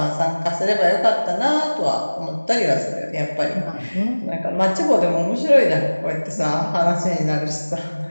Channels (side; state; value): both; inverted; correlation -1.00